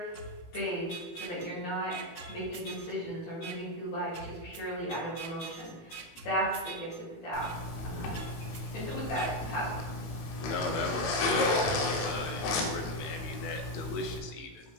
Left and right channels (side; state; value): right; late; 19 ms